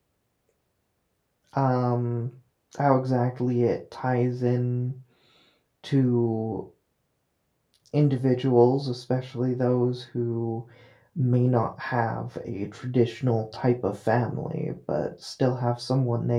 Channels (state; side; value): identical; both; correlation 1.00